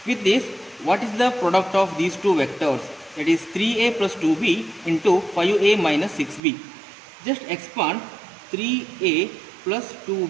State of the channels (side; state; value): left; drops out; at 6.4 s